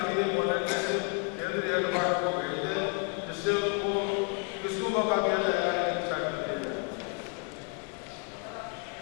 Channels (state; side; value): quieter; right; 34.6 dB